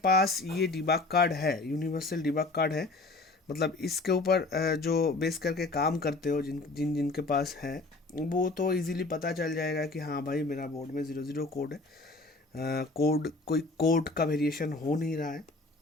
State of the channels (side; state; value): right; quieter; 3.3 dB